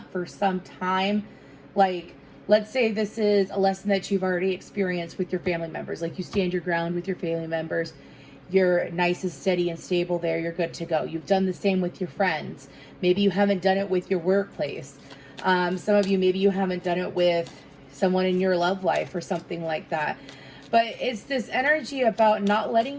for some time. Like Let's say this is a lesson that you've already experienced with your family members. Like you stand your ground with your family members. You're nice and steady and stable there. You're good to go. You've done the same with your friends. Maybe you haven't done it with your workplace. Some of you, maybe you haven't done it with someone in your love life or something like that. But it's this energy about not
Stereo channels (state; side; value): identical; both; correlation 1.00